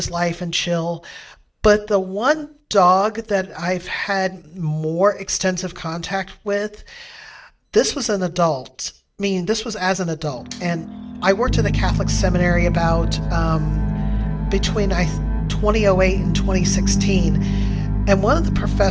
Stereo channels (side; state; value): both; identical; correlation 1.00